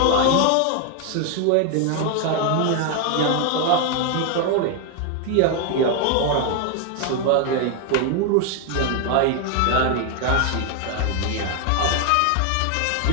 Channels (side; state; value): both; different; correlation 0.01